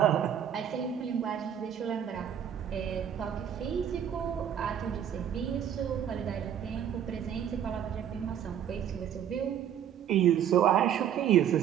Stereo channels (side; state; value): left; quieter; 9.4 dB